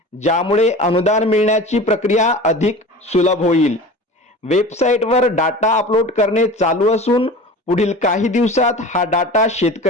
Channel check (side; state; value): both; normal; correlation 0.36